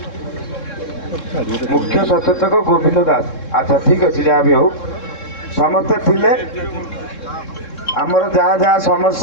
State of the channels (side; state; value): right; late; 3.7 ms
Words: मुख्य सचेतक गोविंद दास। अच्छा ठीक अच्छे जहाँ भी हो समस्ते थिले आमर जहाँ जहाँ